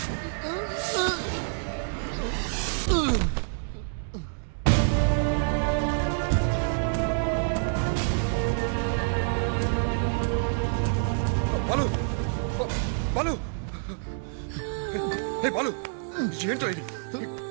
బాలు బాలు హే బాలు, ఏంటో ఇది?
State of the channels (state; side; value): silent; left; digital silence